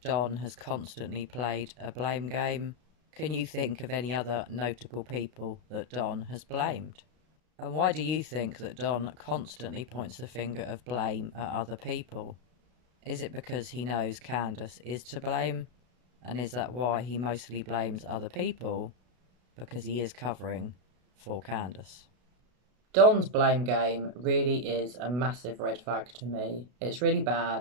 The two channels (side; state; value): left; late; 32 ms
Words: Don has constantly played a blame game? Can you think of any other notable people that Don has blamed? And why do you think that Don constantly points the finger of blame at other people? Is it because he knows Candace is to blame? And is that why he mostly blames other people? Because he is covering for Candace. Don's blame game really is a massive red flag to me. It's really